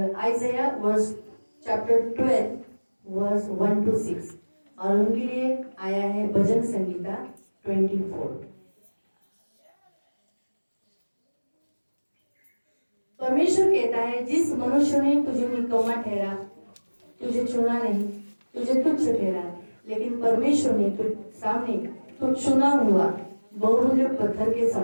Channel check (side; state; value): both; inverted; correlation -1.00